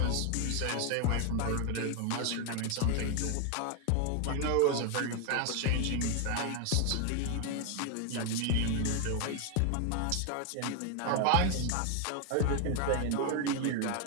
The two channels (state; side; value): different; both; correlation 0.01